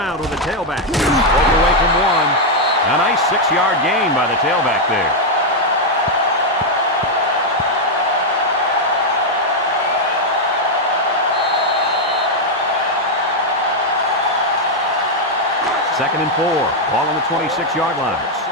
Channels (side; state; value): both; normal; correlation 0.00